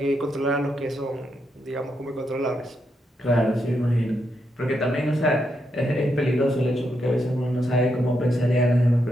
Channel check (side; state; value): both; normal; correlation 0.82